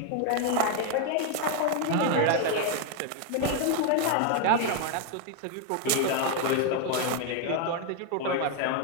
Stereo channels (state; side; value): different; both; correlation 0.01